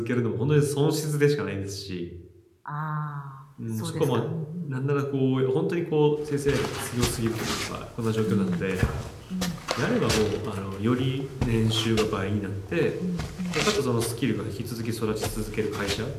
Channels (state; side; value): identical; both; correlation 1.00